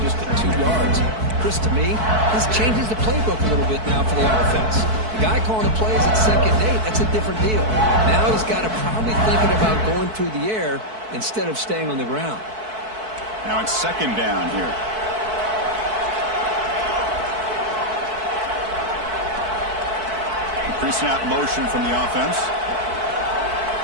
just at 2 yards. Chris, to me, this changes the playbook a little bit now for the offense. The guy calling the plays at 2nd and 8, that's a different deal. Now he's got to probably thinking about going through the air instead of staying on the ground. Now it's 2nd down here. Pre-snap motion from the offense.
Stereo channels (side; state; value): left; late; 4.6 ms